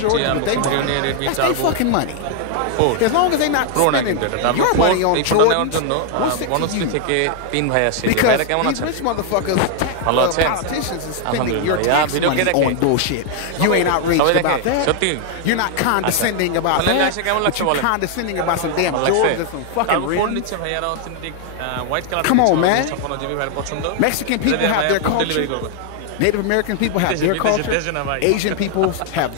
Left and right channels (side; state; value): both; different; correlation 0.00